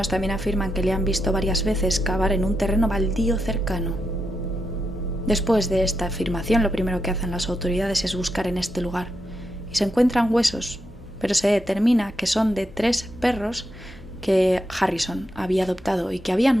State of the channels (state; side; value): normal; both; correlation 0.84